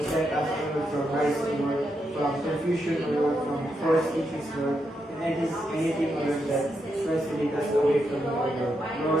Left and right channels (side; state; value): both; normal; correlation 0.82